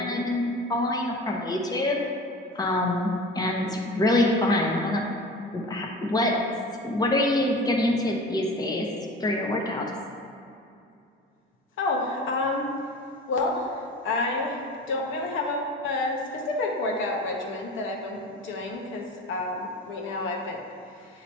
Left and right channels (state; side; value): normal; both; correlation 0.36